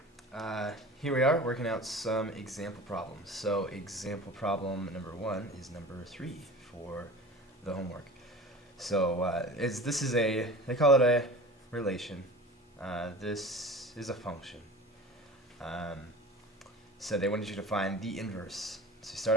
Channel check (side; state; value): both; normal; correlation 0.38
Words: here we are working out some example problems. So example problem number 1 is number 3 for the homework. So they call it a relation. This is a function. So they wanted you to find the inverse. So you start